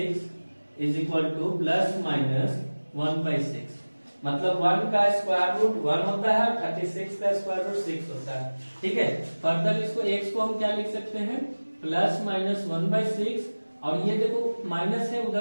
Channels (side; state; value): both; inverted; correlation -1.00